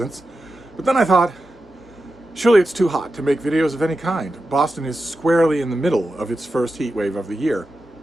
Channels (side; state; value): both; normal; correlation 0.91